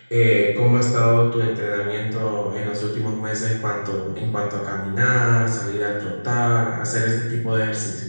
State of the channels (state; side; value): inverted; both; correlation -1.00